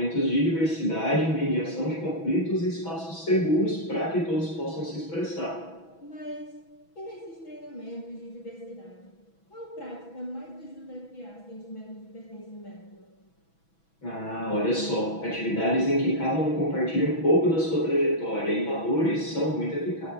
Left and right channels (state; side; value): late; right; 6.1 ms